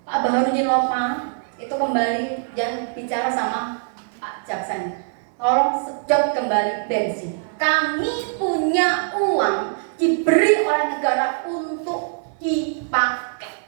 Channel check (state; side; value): silent; left; 64 dB below the other